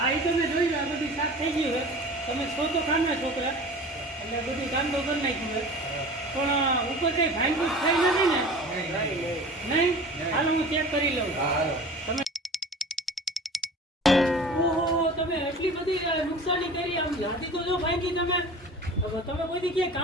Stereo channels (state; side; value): normal; both; correlation 0.39